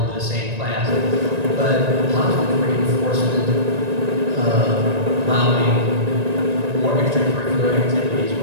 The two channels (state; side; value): late; left; 1.9 ms